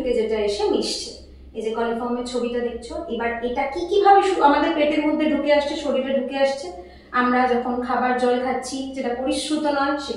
যেটা এসে মিশছে। এই যে কলিফর্মের ছবিটা দেখছো, এবার এটা কি কিভাবে আমাদের পেটের মধ্যে ঢুকে আসছে, শরীরে ঢুকে আসছে? আমরা যখন খাবার জল খাচ্ছি যেটা পরিশ্রুত নয়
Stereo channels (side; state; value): both; identical; correlation 1.00